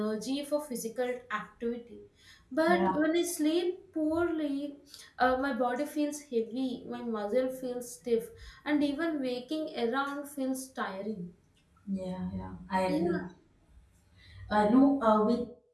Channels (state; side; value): identical; both; correlation 1.00